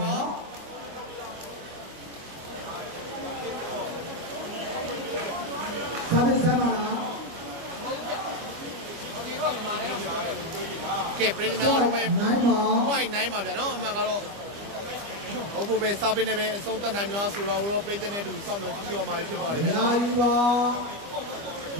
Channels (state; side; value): late; left; 25 ms